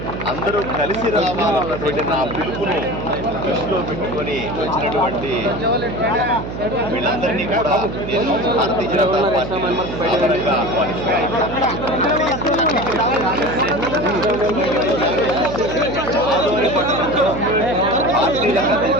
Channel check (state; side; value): noise; right; hum, 7 dB below the sound